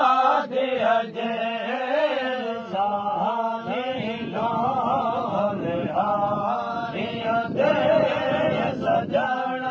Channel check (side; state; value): both; identical; correlation 1.00